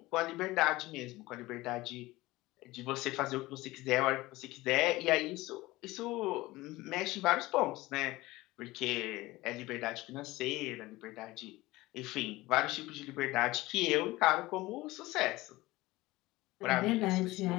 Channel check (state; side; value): quieter; right; 19.3 dB